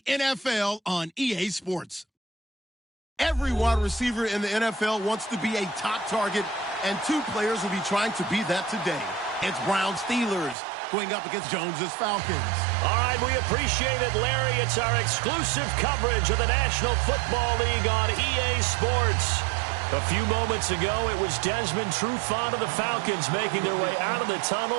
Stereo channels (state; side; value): drops out; left; at 10.6 s